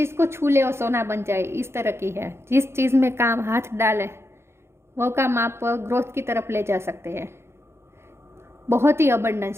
को छू ले वो सोना बन जाए, इस तरह की है। जिस चीज़ में काम हाथ डाले वो काम आप ग्रोथ की तरफ ले जा सकते हैं। बहुत ही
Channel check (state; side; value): late; left; 0.12 ms